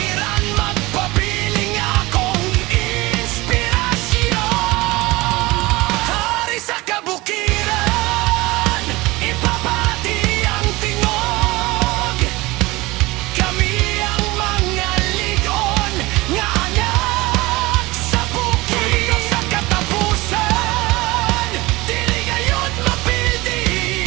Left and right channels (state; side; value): quieter; left; 21.3 dB